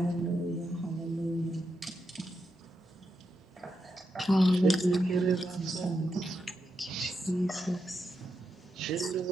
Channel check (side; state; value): both; normal; correlation 0.85